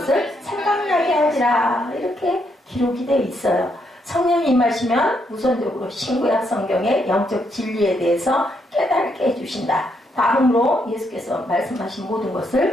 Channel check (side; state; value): both; normal; correlation 0.76